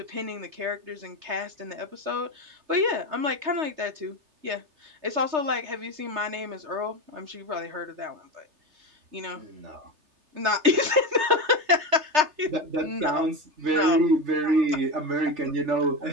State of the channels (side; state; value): left; late; 3.3 ms